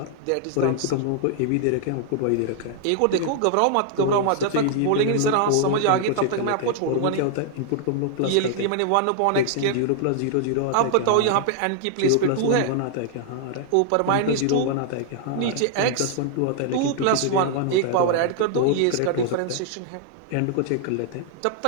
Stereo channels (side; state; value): both; different; correlation -0.01